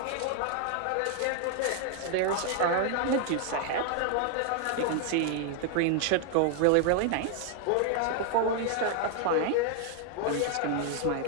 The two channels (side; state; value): both; different; correlation 0.00